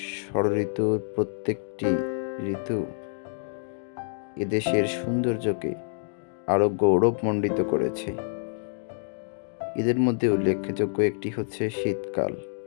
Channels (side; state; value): right; silent; digital silence